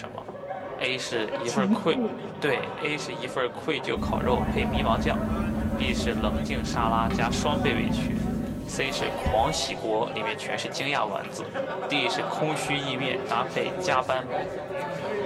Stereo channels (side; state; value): both; identical; correlation 1.00